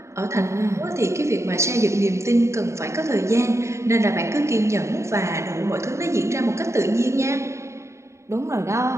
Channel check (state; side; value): late; left; 0.14 ms